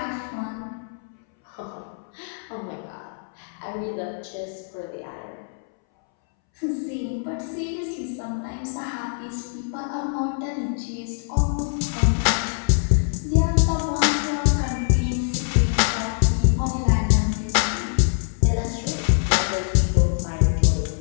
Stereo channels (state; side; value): silent; right; 63 dB below the other